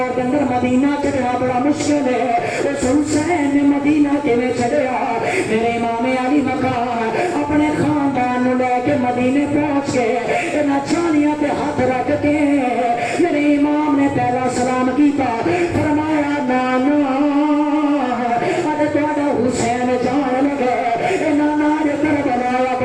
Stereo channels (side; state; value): both; identical; correlation 1.00